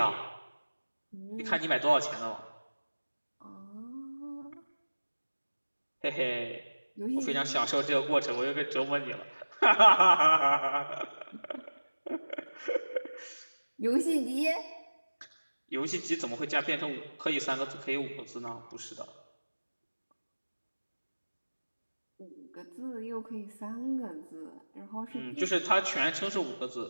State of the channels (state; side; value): inverted; both; correlation -1.00